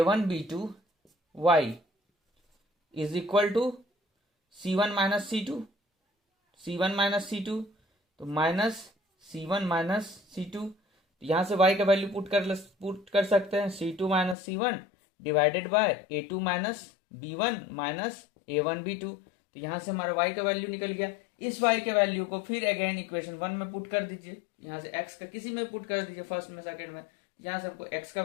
y is equal to c1 minus c2, c1 minus c2 तो माइनस c1 माइनस c2। यहां से y का वैल्यू पुट कर सकते हैं, c2 minus c1 divided by a2 minus b1 minus a1b2। तो यहां से हमारा y का वैल्यू निकल गया। इस y के वैल्यू को फिर अगेन इक्वेशन 1 में पुट कर दीजिए, यहां से x का किसी में पुट कर दीजिए, फर्स्ट में सेकंड में, यहां से हमको x का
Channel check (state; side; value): drops out; right; at 14.4 s